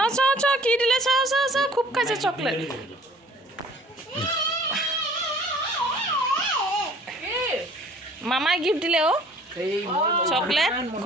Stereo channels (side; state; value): both; normal; correlation 0.53